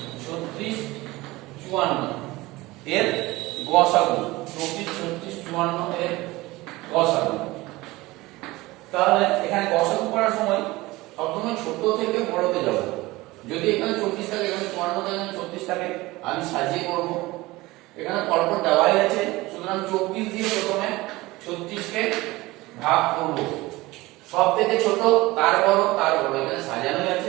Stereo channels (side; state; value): left; quieter; 20.1 dB